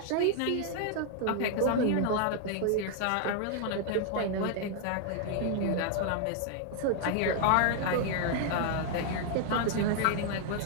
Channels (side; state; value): both; different; correlation 0.00